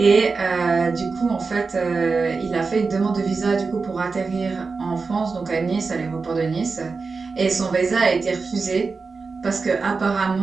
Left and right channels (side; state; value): left; quieter; 4.4 dB